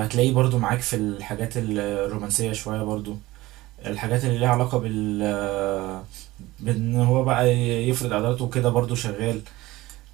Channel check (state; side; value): quieter; left; 18.5 dB